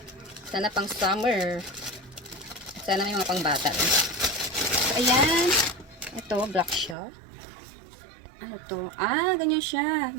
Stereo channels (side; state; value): left; drops out; at 7.0 s